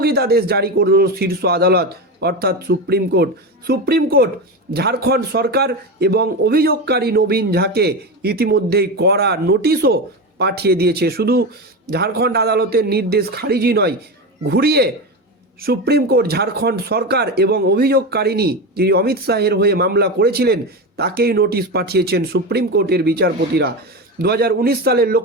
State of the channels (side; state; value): both; normal; correlation 0.19